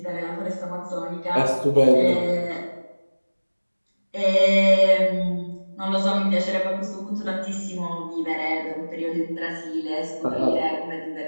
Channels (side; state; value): both; inverted; correlation -1.00